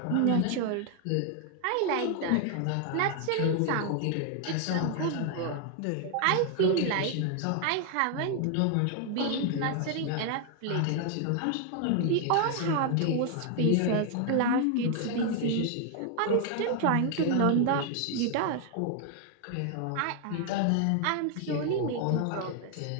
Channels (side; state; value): both; different; correlation 0.00